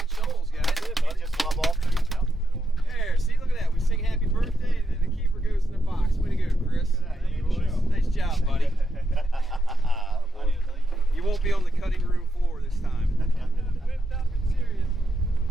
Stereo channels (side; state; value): both; normal; correlation 0.83